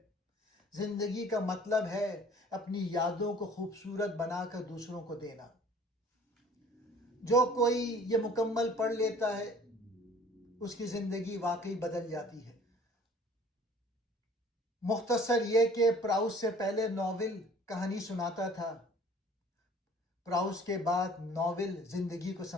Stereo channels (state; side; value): normal; both; correlation 0.51